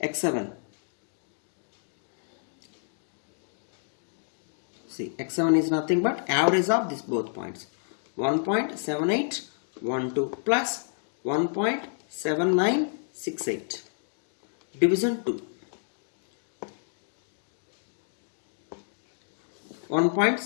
x7. See, x7 is nothing but average of these both points. 1.7812 plus 1.7968 division 2.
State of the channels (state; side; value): silent; right; digital silence